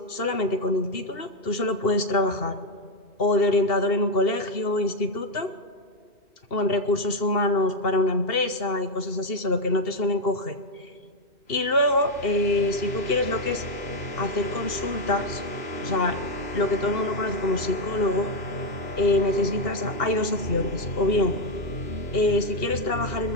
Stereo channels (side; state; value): right; late; 2.7 ms